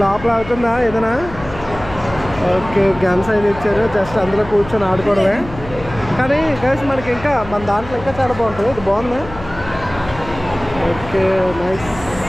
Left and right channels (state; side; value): noise; left; hum, 14 dB below the sound